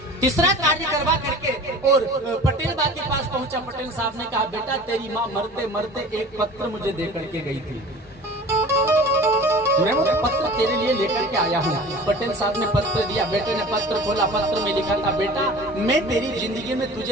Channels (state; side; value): normal; both; correlation 0.41